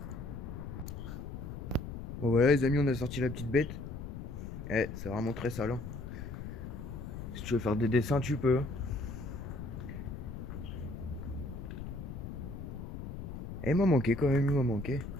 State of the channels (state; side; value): noise; left; rumble, 8 dB below the sound